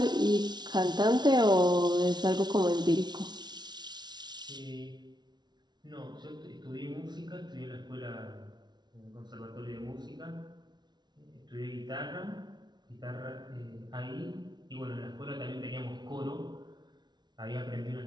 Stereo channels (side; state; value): left; late; 0.20 ms